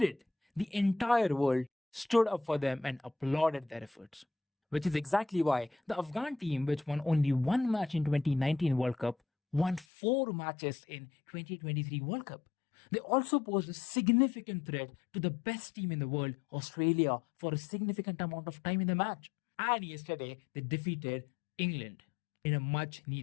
it, the entire world stood up for them and applauded their efforts. Which is exactly why the Afghan team, which won only one match in 2019 World Cup, won 4 matches in 2023 World Cup. They also posed a significant threat to the best team in the world, Australia, for a significant amount of time in the match. And yesterday, they defeated England in a much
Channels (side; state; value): right; drops out; at 9.9 s